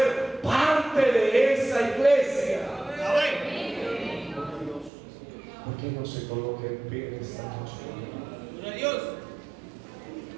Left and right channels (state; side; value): drops out; left; at 4.9 s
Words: parte de esa iglesia. ¿Por qué no se coloca en pie esta noche? Gloria a Dios.